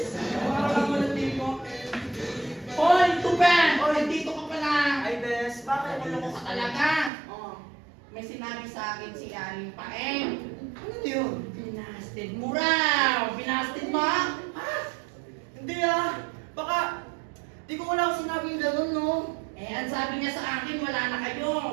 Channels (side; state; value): left; drops out; at 7.1 s